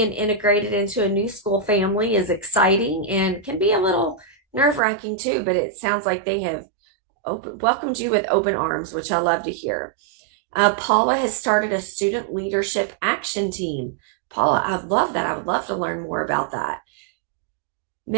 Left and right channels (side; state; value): left; drops out; at 4.8 s